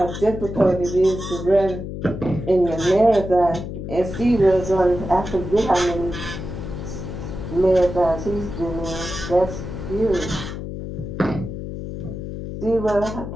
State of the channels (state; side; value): noise; left; hum, 7 dB below the sound